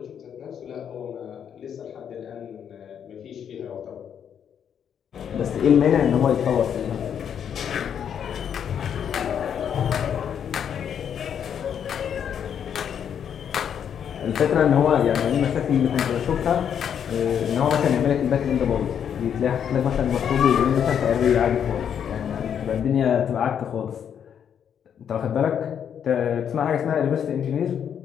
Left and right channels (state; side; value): quieter; right; 8.4 dB